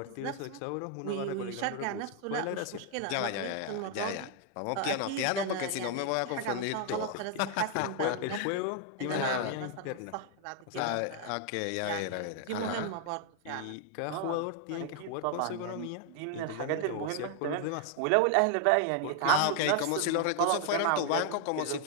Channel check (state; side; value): different; both; correlation 0.00